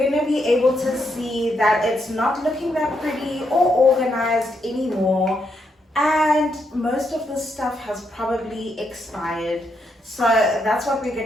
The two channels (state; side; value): normal; both; correlation 0.79